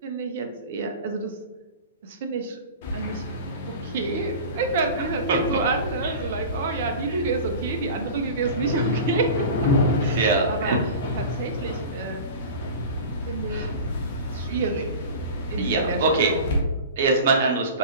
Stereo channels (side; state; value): both; inverted; correlation -0.34